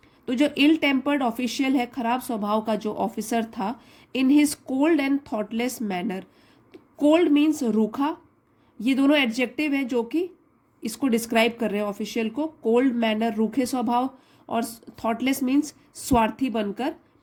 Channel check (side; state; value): both; identical; correlation 1.00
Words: तो जो इल टेम्पर्ड ऑफिशियल है, खराब स्वभाव का जो ऑफिसर था, in his cold and thoughtless manner, cold means रूखा, ये दोनों एडजेक्टिव हैं जो कि इसको डिस्क्राइब कर रहे हैं ऑफिशियल को। कोल्ड मैनर रूखे स्वभाव, और थॉटलेस मीन्स स्वार्थी बनकर।